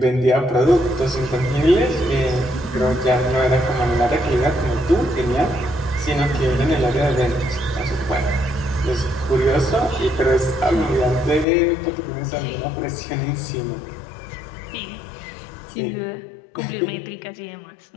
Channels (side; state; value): right; drops out; at 11.5 s